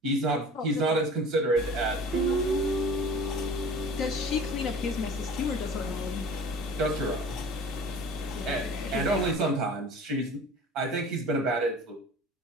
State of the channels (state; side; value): normal; both; correlation 0.42